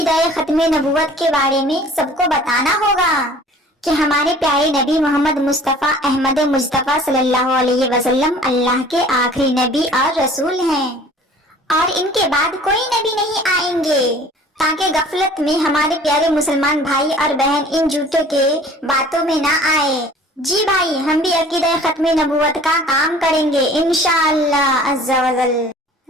खत्म नबूवत के बारे में सबको बताना होगा कि हमारे प्यारे नबी मोहम्मद मुस्तफ़ा अहमद मुस्तफ़ा सल्लल्लाहु अलैहि वसल्लम अल्लाह के आखिरी नबी और रसूल हैं और इनके बाद कोई नबी नहीं आएंगे, ताकि गफलत में हमारे प्यारे मुसलमान भाई और बहन इन झूठों के बातों में ना आए। जी भाई, हम भी अकीदा खत्म नबूवत का काम करेंगे इंशाअल्लाह अज़्ज़ा वजल।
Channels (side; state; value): both; normal; correlation 0.49